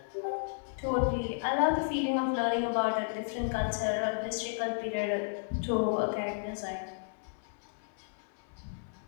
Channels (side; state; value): right; silent; 56 dB below the other